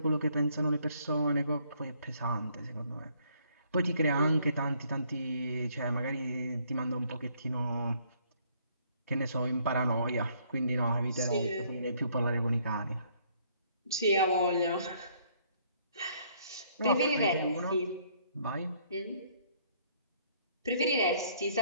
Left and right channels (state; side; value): inverted; both; correlation -0.65